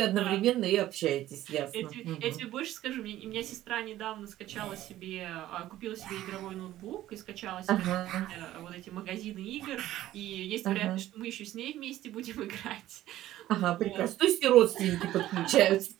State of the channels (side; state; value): left; quieter; 14.2 dB